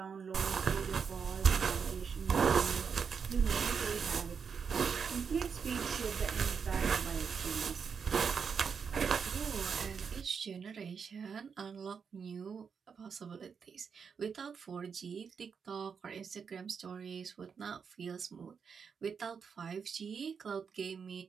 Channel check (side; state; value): left; quieter; 6.3 dB